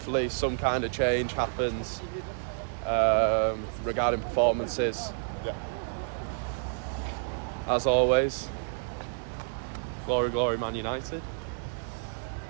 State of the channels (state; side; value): silent; left; 58 dB below the other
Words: some kind of change happens regarding performances. yeah. As always, glory, glory, Man United.